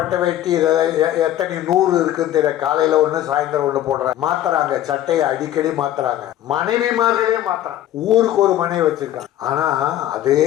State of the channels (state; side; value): quieter; right; 12.7 dB